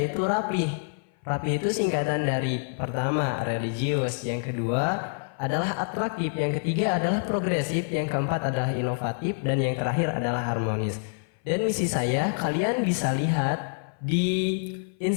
rapih. Rapih itu singkatan dari pertama religius, yang kedua adalah atraktif, yang ketiga adalah progresif, yang keempat adalah inovatif, dan yang terakhir adalah harmonis. Dan misi saya kalian bisa lihat di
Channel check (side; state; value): right; silent; 56 dB below the other